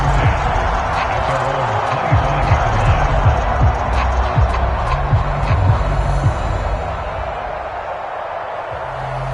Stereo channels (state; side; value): identical; both; correlation 1.00